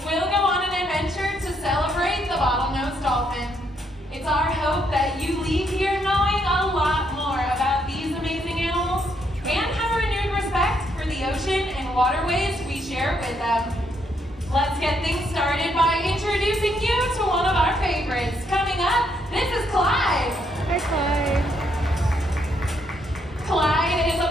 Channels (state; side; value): normal; both; correlation 0.74